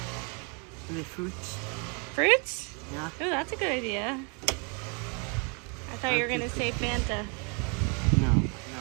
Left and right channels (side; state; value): left; quieter; 35.2 dB